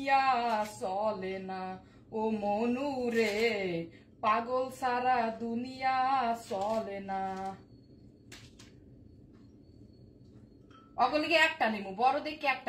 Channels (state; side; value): identical; both; correlation 1.00